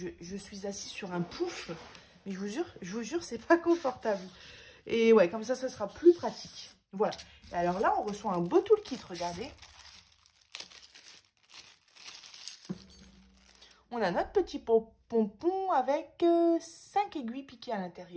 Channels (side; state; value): both; identical; correlation 1.00